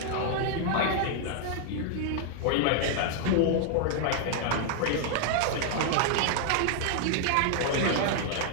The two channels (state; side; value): different; both; correlation -0.01